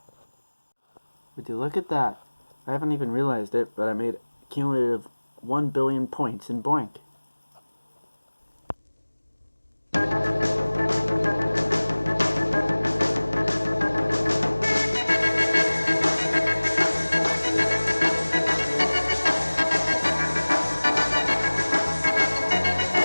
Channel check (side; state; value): both; inverted; correlation -1.00